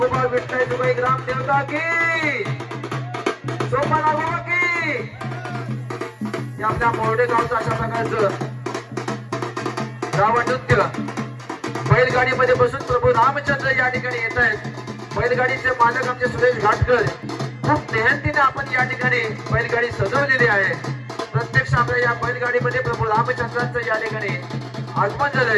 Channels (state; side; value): identical; both; correlation 1.00